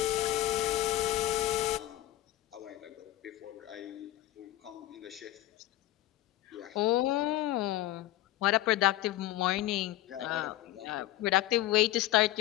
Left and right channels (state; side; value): quieter; right; 15.2 dB